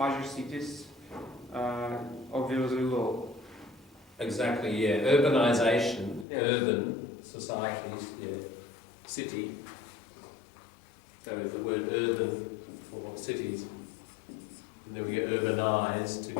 cities, obviously low. Exactly, yeah. Urbanization, urban societies, city. So the word urban for cities. And then we get urbanized to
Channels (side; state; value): right; drops out; at 6.2 s